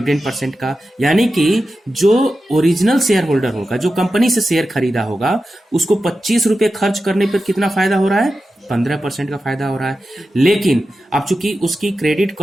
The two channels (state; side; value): normal; both; correlation 0.92